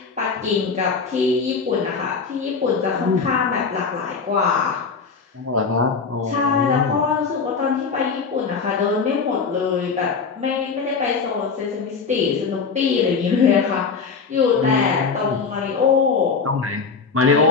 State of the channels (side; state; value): right; quieter; 5.2 dB